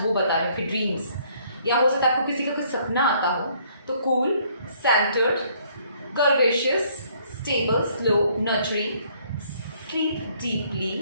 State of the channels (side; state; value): both; inverted; correlation -0.64